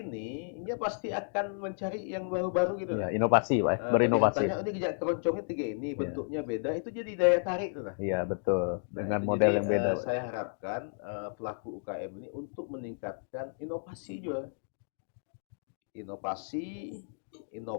pasti akan mencari yang baru-baru gitu nah. Inovasi, Pak. Nah, Berinovasi. kelihatannya ini jejak keroncongnya tiga ini, bentuknya beda, itu jadi daya tarik tuh nah. Iya, betul. Nah, Dengan itu model jadi yang beda. saya harapkan pelaku UKM ini untuk meningkatkan inovasi juga. Inovasi,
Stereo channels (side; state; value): right; silent; digital silence